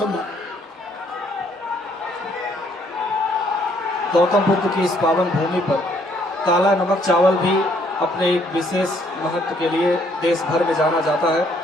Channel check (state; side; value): normal; both; correlation 0.67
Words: गौतम बुद्ध की इस पावन भूमि पर काला नमक चावल भी अपने एक विशेष महत्व के लिए देश भर में जाना जाता है।